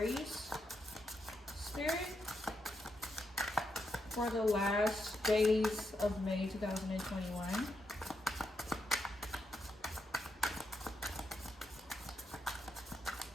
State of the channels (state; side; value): normal; both; correlation 0.82